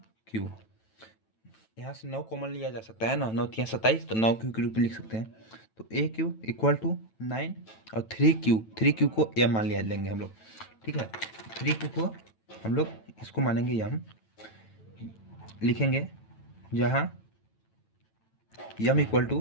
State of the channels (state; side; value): late; right; 9.1 ms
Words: क्यू। यहाँ से 9 कॉमन लिया जा सकता है ना, 9 3 27, तो 9 क्यू के रूप में लिख सकते हैं। तो ए क्यू इक्वल टू 9 और 3 क्यू को एम मान लिया लेंगे हम लोग, ठीक है। 3 क्यू को हम लोग इसको मानेंगे एम, लिखेंगे जहाँ एम इक्वल